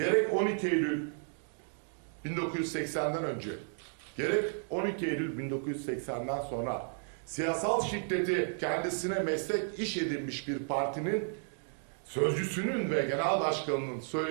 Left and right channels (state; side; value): silent; left; digital silence